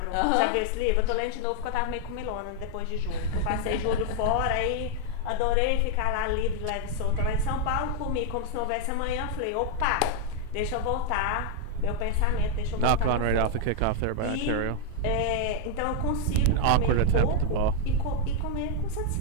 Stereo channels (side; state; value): both; different; correlation 0.00